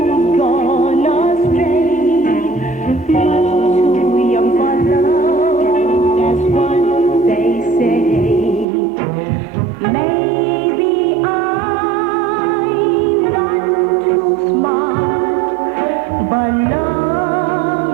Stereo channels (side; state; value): left; drops out; at 8.7 s